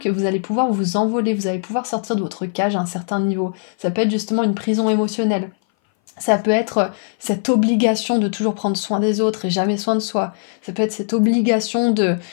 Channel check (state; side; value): silent; right; 59 dB below the other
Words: vous allez pouvoir vous envoler, vous allez pouvoir sortir de votre cage à un certain niveau. Ça peut être justement une prison émotionnelle. Ça peut être cette obligation de toujours prendre soin des autres et jamais soin de soi. Ça peut être cette obligation de